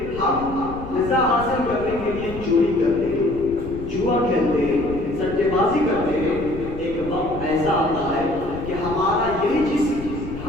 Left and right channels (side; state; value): left; noise; rumble, 11 dB below the sound